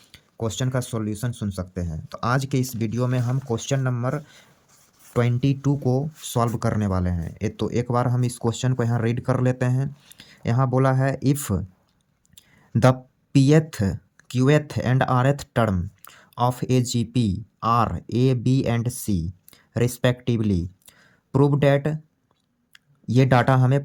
क्वेश्चन का सॉल्यूशन सुन सकते हैं। तो आज के इस वीडियो में हम क्वेश्चन नंबर 22 को सॉल्व करने वाले हैं। तो एक बार हम इस क्वेश्चन को यहाँ रीड कर लेते हैं। यहाँ बोला है if the pth, qth and rth term of a GP are A, B and C respectively. Prove that ये डाटा हमें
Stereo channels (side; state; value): both; identical; correlation 1.00